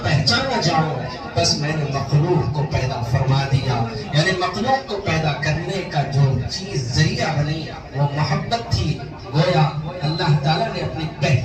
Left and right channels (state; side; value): identical; both; correlation 1.00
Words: پہچانا جاؤں، بس میں نے مخلوق کو پیدا فرما دیا۔ یعنی مخلوق کو پیدا کرنے کا جو چیز ذریعہ بنی وہ محبت تھی۔ گویا اللہ تعالیٰ نے اپنی